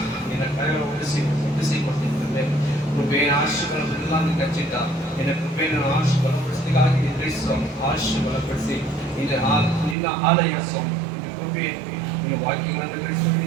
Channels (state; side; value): drops out; left; at 10.0 s